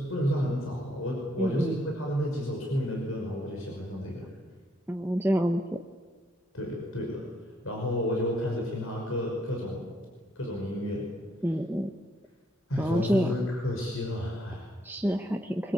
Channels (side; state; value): both; normal; correlation 0.71